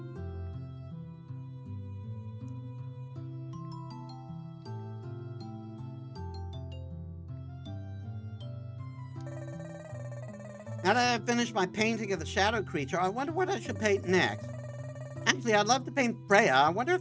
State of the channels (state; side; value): identical; both; correlation 1.00